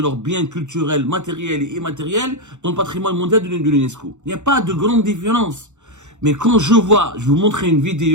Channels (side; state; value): left; late; 0.84 ms